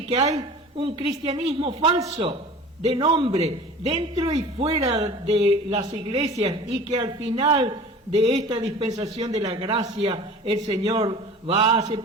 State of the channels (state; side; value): normal; both; correlation 0.41